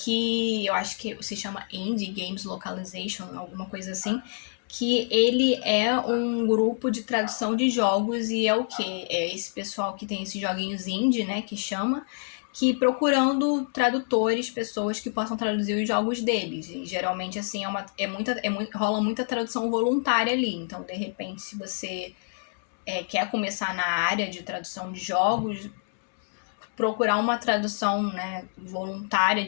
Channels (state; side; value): silent; right; digital silence